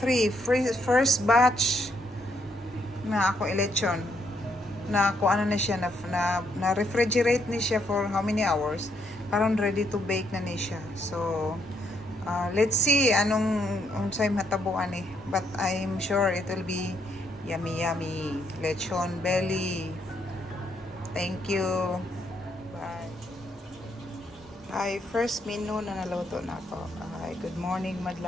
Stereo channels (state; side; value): normal; both; correlation 0.74